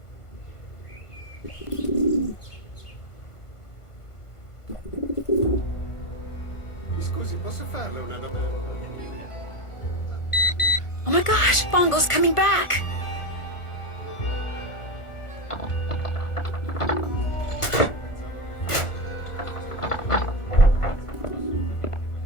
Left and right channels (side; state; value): right; late; 1.4 ms